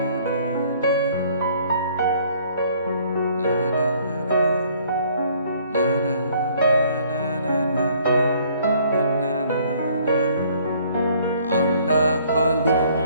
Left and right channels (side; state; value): both; inverted; correlation -0.60